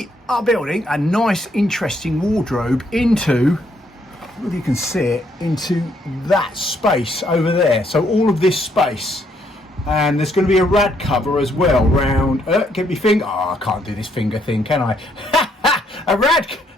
are building a nice, interesting wardrobe into, if you can see it, into that space over there. So all of this space, and there's going to be a rad cover as well round. Get me finger. Oh, I can't do this finger thing, can I? A rad.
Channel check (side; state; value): both; normal; correlation 0.71